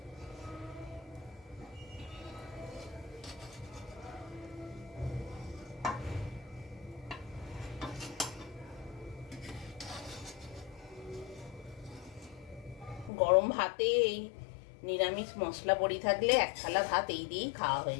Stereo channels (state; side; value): drops out; right; at 13.1 s